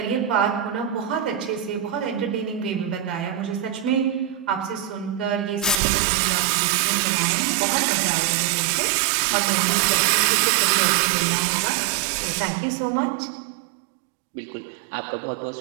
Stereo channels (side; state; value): left; drops out; at 5.8 s